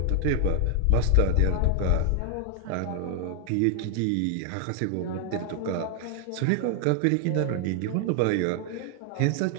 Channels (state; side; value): different; both; correlation 0.00